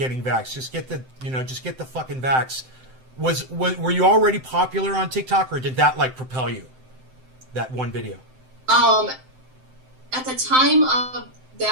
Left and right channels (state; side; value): late; left; 7.7 ms